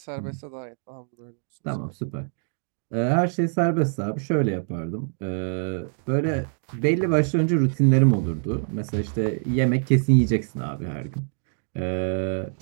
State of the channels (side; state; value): left; silent; 62 dB below the other